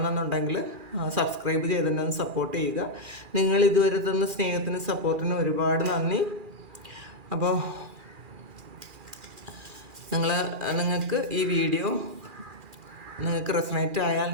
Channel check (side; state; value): left; late; 2.4 ms